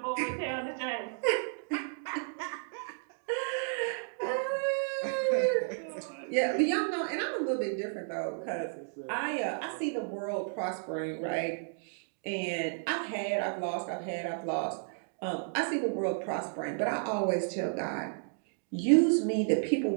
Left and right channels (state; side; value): silent; left; digital silence